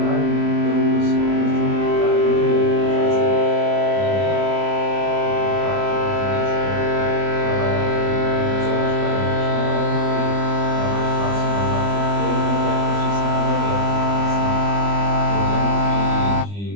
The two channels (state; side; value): late; left; 20 ms